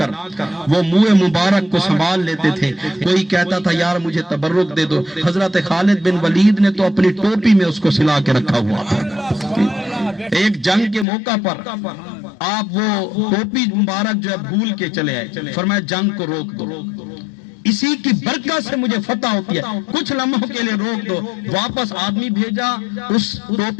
وہ منہ مبارک کو سنبھال لیتے تھے. کوئی کہتا تھا یار مجھے تبرک دے دو. حضرت خالد بن ولید نے تو اپنی ٹوپی میں اس کو سلا کے رکھا ہوا تھا. ایک جنگ کے موقع پر آپ وہ ٹوپی مبارک جو ہے بھول کے چلے آئے, فرمایا جنگ کو روک دو, اسی کی برکت سے مجھے فتح ہوتی ہے, کچھ لمحوں کے لیے روک دو. واپس آدمی بھیجا, اس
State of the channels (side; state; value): right; drops out; at 11.1 s